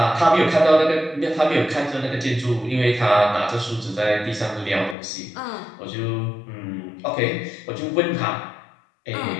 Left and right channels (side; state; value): right; drops out; at 5.0 s